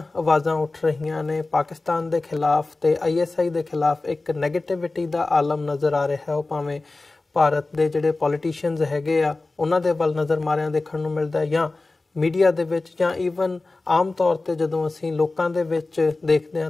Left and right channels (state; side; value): quieter; right; 3.3 dB